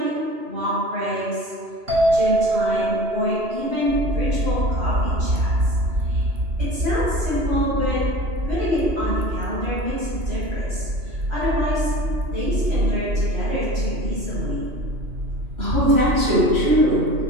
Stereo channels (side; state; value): left; late; 2.9 ms